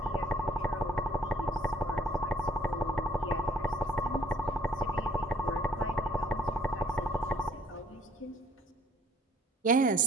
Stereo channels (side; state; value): both; normal; correlation 0.58